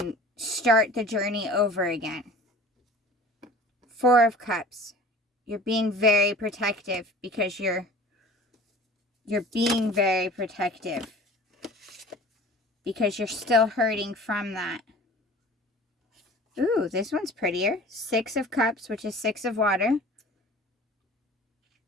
start the journey over again. Four of Cups. You're being very protective, because you're being very protective, because you're still hurting from that. Ooh, this one's prettier. Six of Cups, which is Six of Water.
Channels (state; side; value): normal; both; correlation 0.43